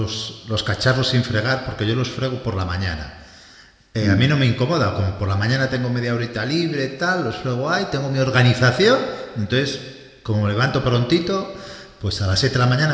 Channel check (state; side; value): identical; both; correlation 1.00